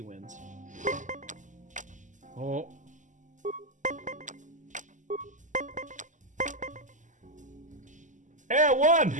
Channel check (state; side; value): late; left; 0.37 ms